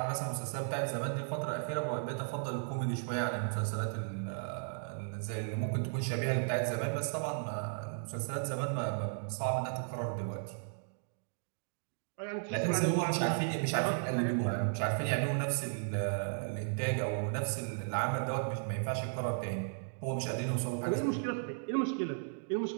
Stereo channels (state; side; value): silent; left; digital silence